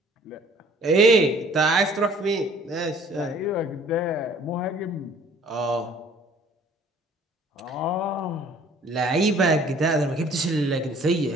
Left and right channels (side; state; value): both; normal; correlation 0.55